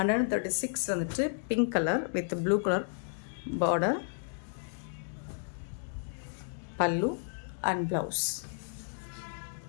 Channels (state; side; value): silent; right; digital silence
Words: வந்துட்டு pink colour with blue colour border, பல்லு and blouse.